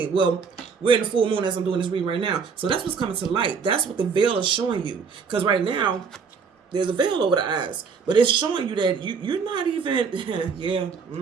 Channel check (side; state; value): left; quieter; 5.7 dB